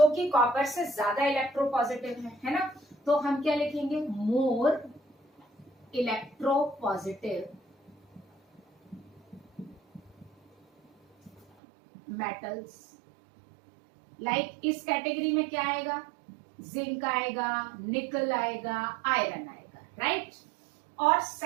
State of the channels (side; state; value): left; drops out; at 11.5 s